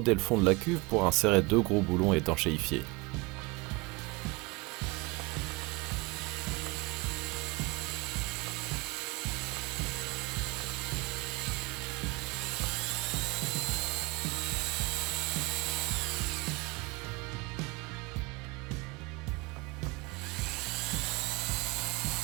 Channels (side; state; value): left; quieter; 25.2 dB